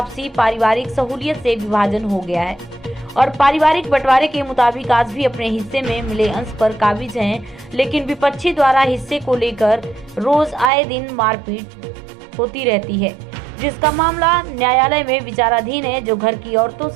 पारिवारिक सहूलियत से विभाजन हो गया है और पारिवारिक बंटवारे के मुताबिक आज भी अपने हिस्से में मिले अंश पर काबिज हैं, लेकिन विपक्षी द्वारा हिस्से को लेकर रोज आए दिन मारपीट होती रहती है, जिसका मामला न्यायालय में विचाराधीन है, जो घर की औरतों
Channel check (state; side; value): drops out; left; at 10.7 s